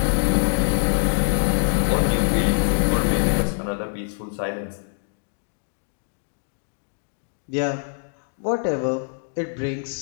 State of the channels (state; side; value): silent; right; digital silence